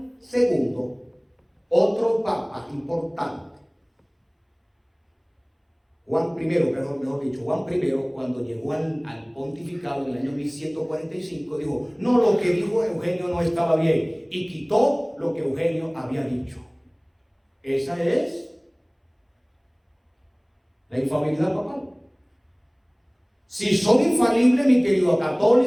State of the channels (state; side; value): identical; both; correlation 1.00